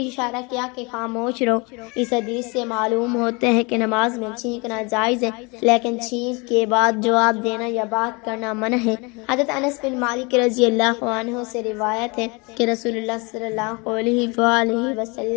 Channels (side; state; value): right; quieter; 28.6 dB